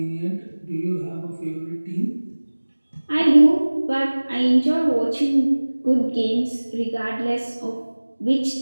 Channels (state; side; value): inverted; both; correlation -1.00